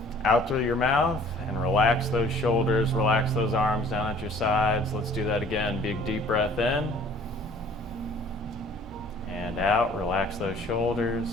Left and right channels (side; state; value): both; normal; correlation 0.52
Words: out through your mouth, and relax those shoulders, relax those arms down at your sides. Let's do that again. Big deep breath in and out. Relax those shoulders.